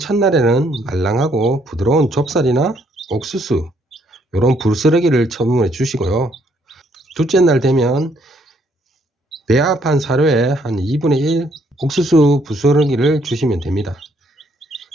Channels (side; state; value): both; normal; correlation 0.69